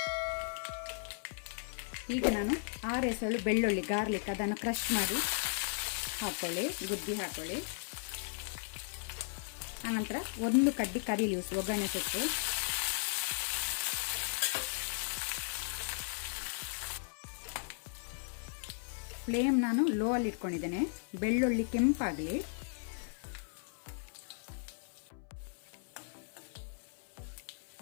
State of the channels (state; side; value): silent; right; 54 dB below the other